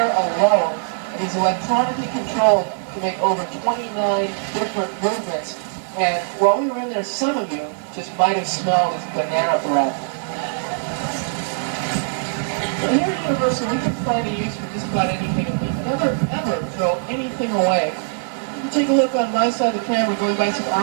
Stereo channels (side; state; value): left; silent; 65 dB below the other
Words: alone. And he's electronically controlled to make over 29 different movements. And while we were in there, some of you just might have smelled his banana breath. And here at Universal, we can find a use for just about anything, and we never, ever throw anything away. You can take a look on my side of the camera, going by some